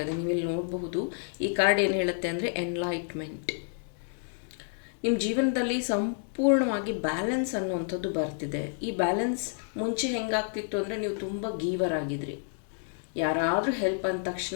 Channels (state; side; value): silent; right; digital silence